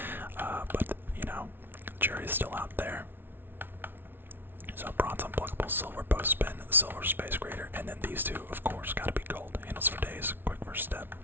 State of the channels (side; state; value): left; late; 0.10 ms